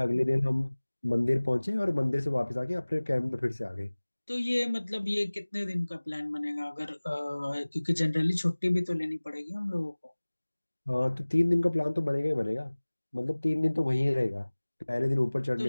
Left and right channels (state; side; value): inverted; both; correlation -1.00